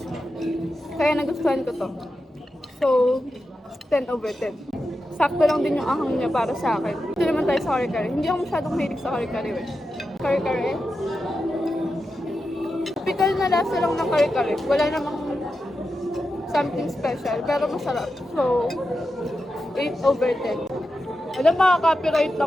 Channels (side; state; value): both; normal; correlation 0.89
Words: Kaya nagustuhan ko to. So, 10 over 10. Sakto lang din yung ahang niya para sa akin. Ito naman tayo sa kare-kare. Hindi ako masyadong mahilig sa kare-kare. Kare-kare. Typical na lasa lang ng kare-kare. Wala namang something special. Pero masarap. So, 8 over 10. Alam, makaka-copyright